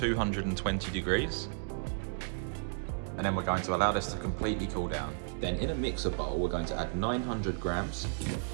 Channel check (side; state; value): left; silent; digital silence